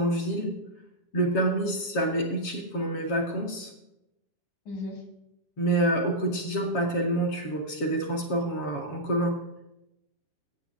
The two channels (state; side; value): late; right; 7.2 ms